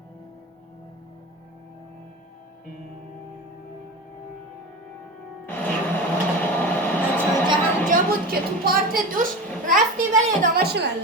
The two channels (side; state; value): both; normal; correlation 0.27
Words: بود که تو پارت دوش رفتی ولی ادامهش